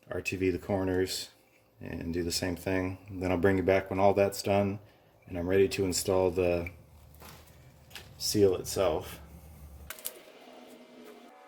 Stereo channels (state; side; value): identical; both; correlation 1.00